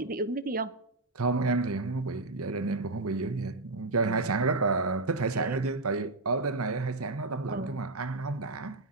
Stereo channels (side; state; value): left; quieter; 3.1 dB